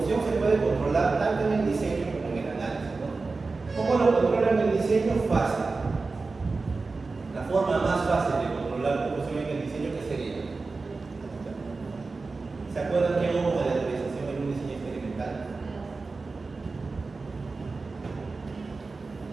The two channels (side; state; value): left; quieter; 3.9 dB